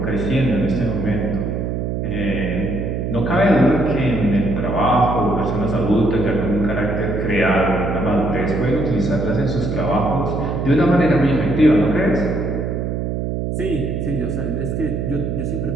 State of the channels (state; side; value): noise; right; hum, 2 dB below the sound